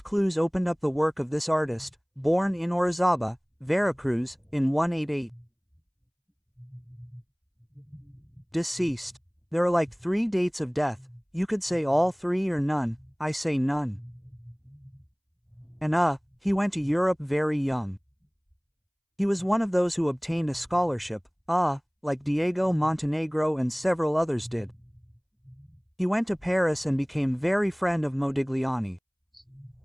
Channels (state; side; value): identical; both; correlation 1.00